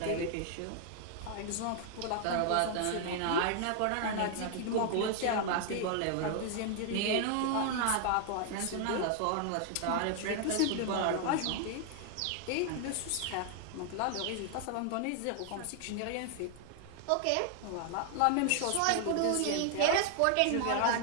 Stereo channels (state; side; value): different; both; correlation 0.00